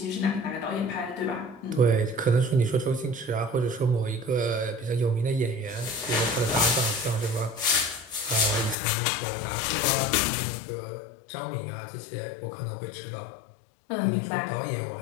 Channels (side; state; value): right; drops out; at 8.8 s